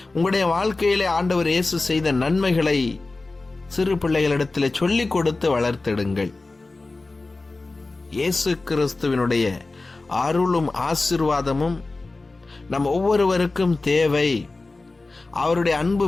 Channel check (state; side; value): quieter; right; 3.4 dB